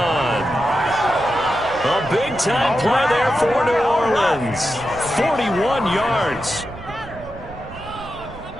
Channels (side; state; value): right; noise; rumble, 16 dB below the sound